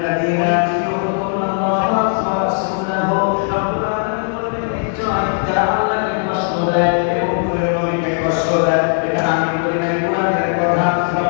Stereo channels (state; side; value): silent; right; 61 dB below the other